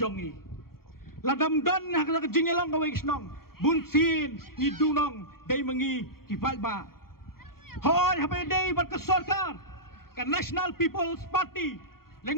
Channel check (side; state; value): right; late; 0.93 ms